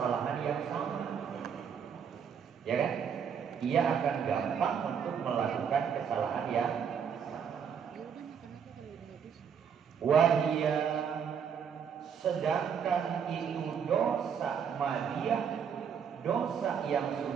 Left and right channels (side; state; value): left; quieter; 7.3 dB